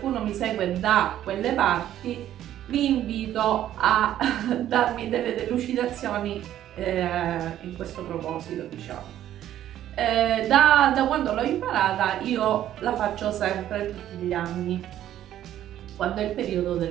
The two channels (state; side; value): quieter; left; 11.9 dB